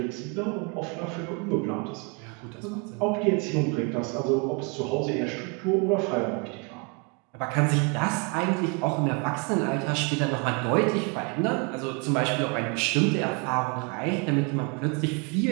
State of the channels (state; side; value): quieter; left; 32.7 dB